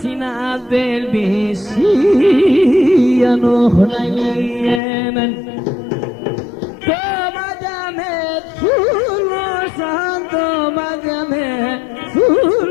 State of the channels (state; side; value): drops out; right; at 4.8 s